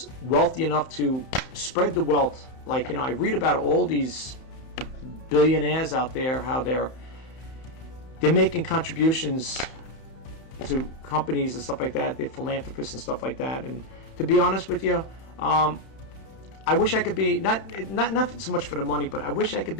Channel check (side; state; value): right; late; 31 ms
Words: wealthy enough to spread the wealth. Like, I read about all these billionaires out there, how they're making contributions to companies and stuff like that. They're philanthropists and stuff like that. And to be honest with you, I wish I could be, not so much for the money, but I wish I could